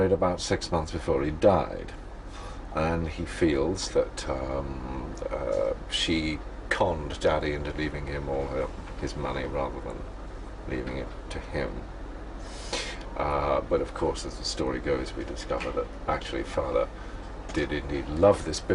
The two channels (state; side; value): identical; both; correlation 1.00